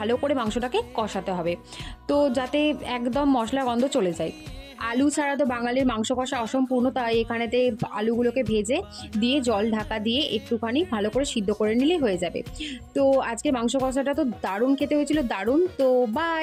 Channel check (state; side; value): identical; both; correlation 1.00